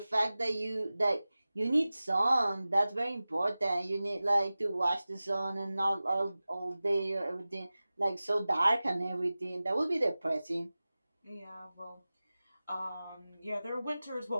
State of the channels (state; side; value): inverted; both; correlation -0.97